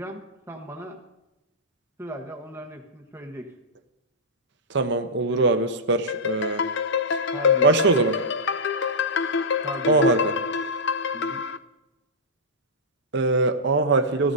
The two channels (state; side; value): normal; both; correlation -0.14